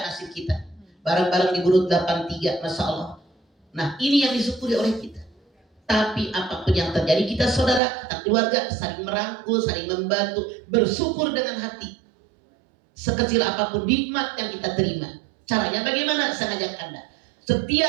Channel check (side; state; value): left; drops out; at 7.8 s